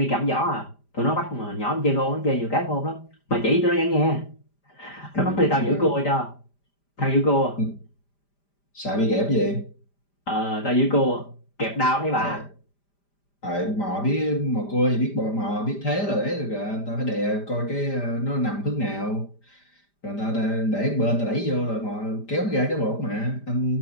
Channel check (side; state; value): right; late; 5.0 ms